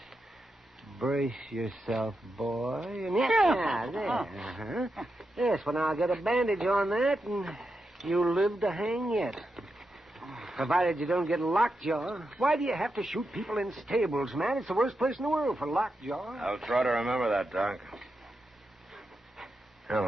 brace yourself, boy. And yeah, there. Uh-huh. Yes, well, now I'll get a bandage on that, and you'll live to hang yet. Provided you don't get lockjaw. Why do you have to shoot people in stables, man? It's the worst place in the world for lockjaw. I'll try to remember that, Doc. Well,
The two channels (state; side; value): normal; both; correlation 0.87